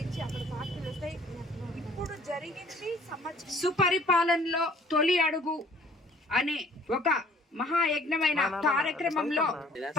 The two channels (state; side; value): normal; both; correlation 0.55